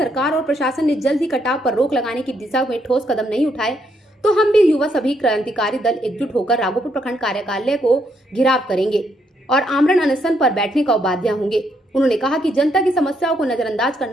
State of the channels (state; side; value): normal; both; correlation 0.75